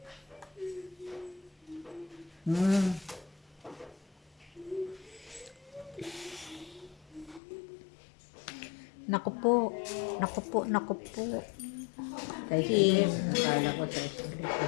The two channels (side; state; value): right; drops out; at 7.4 s